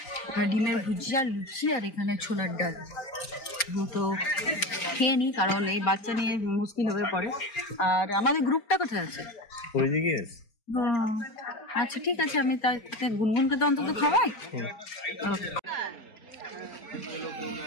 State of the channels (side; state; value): right; late; 4.3 ms